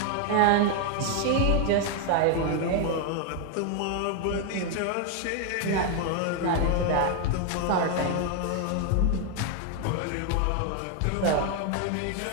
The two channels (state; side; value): different; both; correlation 0.00